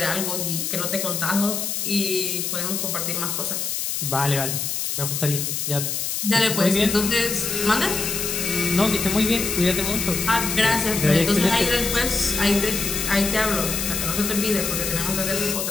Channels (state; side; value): noise; left; hiss, 2 dB below the sound